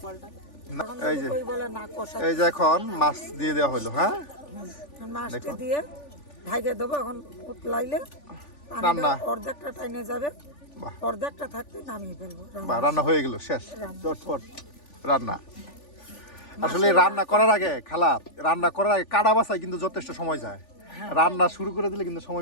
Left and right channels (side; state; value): right; late; 3.4 ms